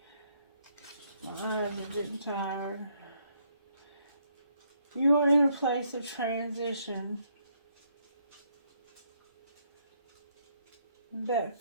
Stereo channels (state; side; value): inverted; both; correlation -0.72